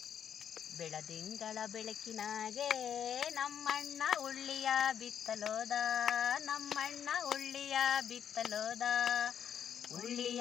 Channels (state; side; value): quieter; right; 8.7 dB